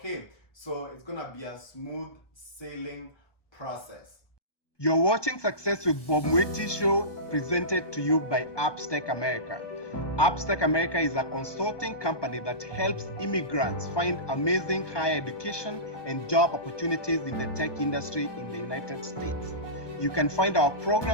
so it's gonna be a smooth sailing process. You're watching Success with Bob Mwiti show, presented to you by Appstech America. Appstech America is a consulting company that helps immigrants find amazing higher education and job opportunities in the tech industry in the United States. You can find our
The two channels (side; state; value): right; late; 1.2 ms